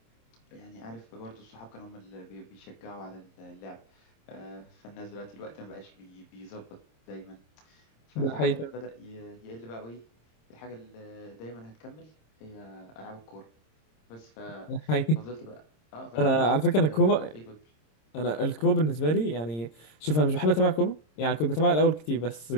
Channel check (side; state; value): right; late; 26 ms